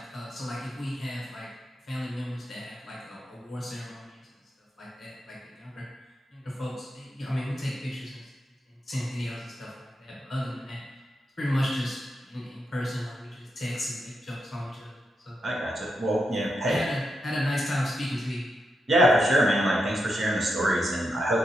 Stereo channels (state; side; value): normal; both; correlation 0.85